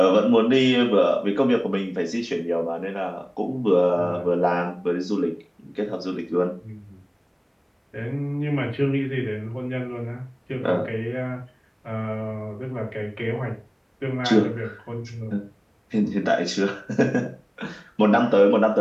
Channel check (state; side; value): identical; both; correlation 1.00